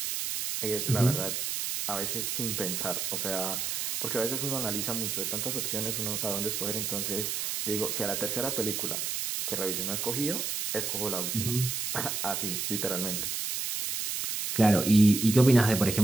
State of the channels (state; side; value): noise; right; hiss, 2 dB below the sound